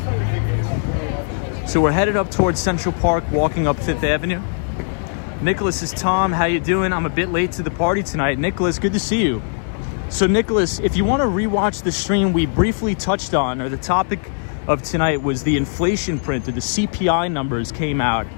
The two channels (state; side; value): silent; right; digital silence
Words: So we're headed up towards Central Park, walking up 5th Avenue. Nicholas is Tom. How you doing? I'm a bit late to the party tonight. Nicholas, good to see you. So Nicholas, if you want to rewatch the stream we briefly touched on, or the topic of tonight was the inflation print, or the CPI numbers came out.